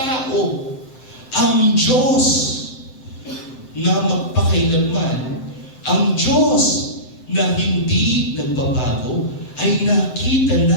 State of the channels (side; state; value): right; late; 7.7 ms